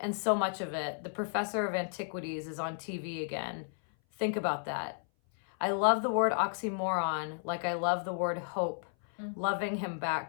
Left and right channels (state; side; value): silent; right; 56 dB below the other